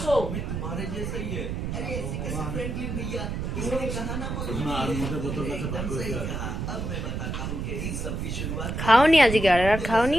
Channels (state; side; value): noise; right; rumble, 3 dB below the sound